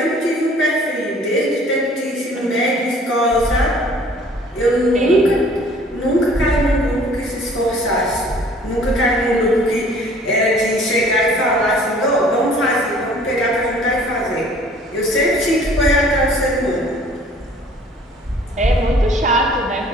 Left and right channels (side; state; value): both; normal; correlation 0.54